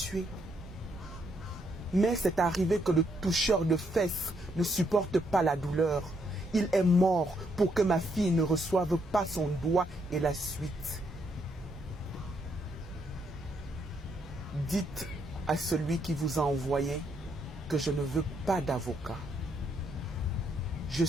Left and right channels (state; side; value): normal; both; correlation 0.74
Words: Mais c'est arrivé que le toucheur de fesses ne supporte pas la douleur. Il est mort pour que ma fille ne reçoive pas son doigt et la suite. Dites à celui qui vous a envoyé que je ne veux pas d'avocat. Je